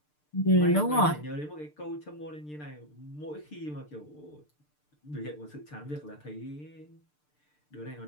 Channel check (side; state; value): right; late; 6.7 ms